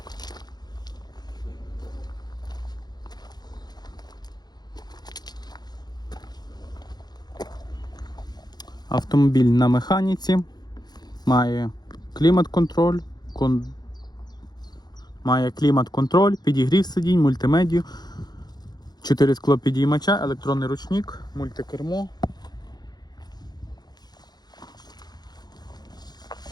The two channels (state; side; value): late; right; 0.20 ms